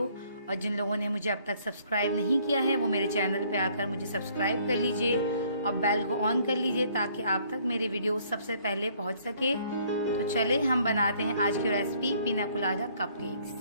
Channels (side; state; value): both; inverted; correlation -0.62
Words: और जिन लोगों ने मुझे अब तक सब्सक्राइब नहीं किया है वो मेरे चैनल पे आकर मुझे सब्सक्राइब कर लीजिए और बेल को ऑन कर लीजिए ताकि आप तक मेरे वीडियो सबसे पहले पहुँच सके। तो चले हम बनाते हैं आज की रेसिपी पीना colada cupcakes.